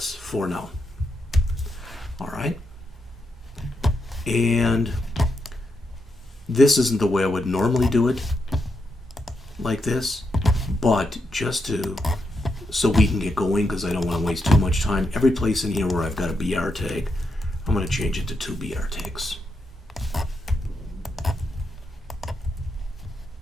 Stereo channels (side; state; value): both; normal; correlation 0.83